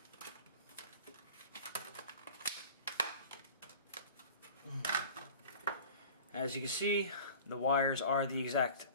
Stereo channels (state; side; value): inverted; both; correlation -0.41